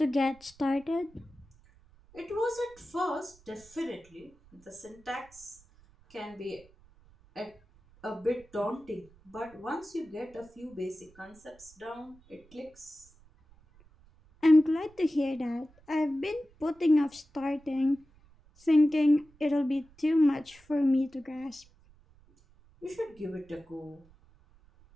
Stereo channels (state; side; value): noise; right; rumble, 27 dB below the sound